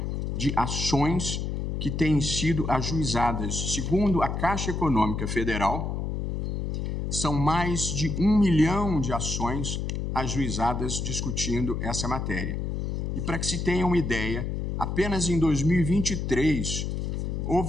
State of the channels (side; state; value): left; noise; hum, 2 dB below the sound